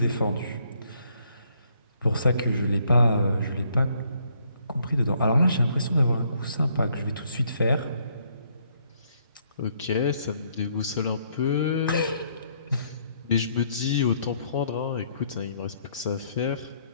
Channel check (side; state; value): both; inverted; correlation -0.69